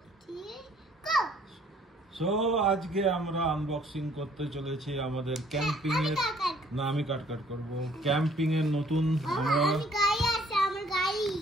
3 go so আজকে আমরা unboxing করতে চলেছি আমাদের ক্যাম্পিং এর না আমি কাট করব ক্যাম্পিং এর নতুন আমরা গাড়ি আছে আমার গাড়ি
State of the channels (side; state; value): both; normal; correlation 0.60